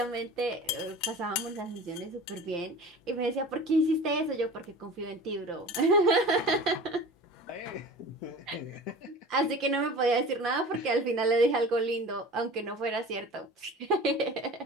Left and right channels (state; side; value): normal; both; correlation 0.38